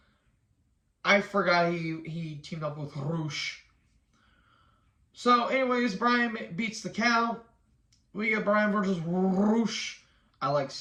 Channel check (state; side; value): identical; both; correlation 1.00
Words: I forgot he teamed up with Roosh. So, anyways, Bryan beats the count. We get Bryan versus Roosh. I like